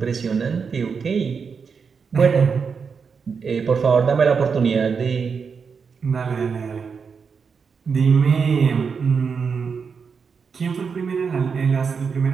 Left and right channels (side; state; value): left; quieter; 5.8 dB